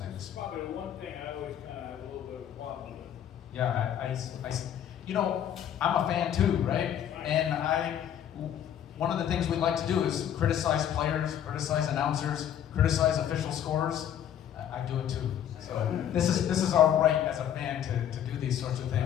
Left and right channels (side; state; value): right; quieter; 10.0 dB